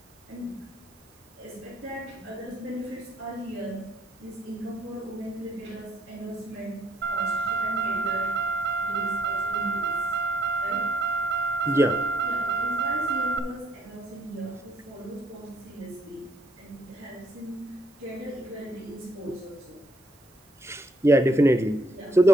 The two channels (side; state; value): right; noise; hiss, 30 dB below the sound